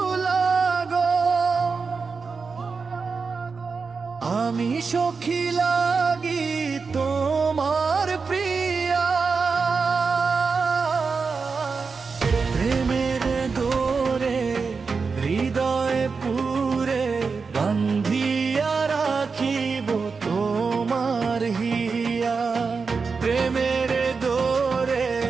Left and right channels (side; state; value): left; quieter; 4.9 dB